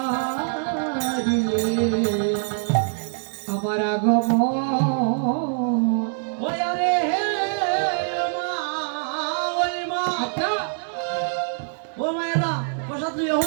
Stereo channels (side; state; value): left; silent; digital silence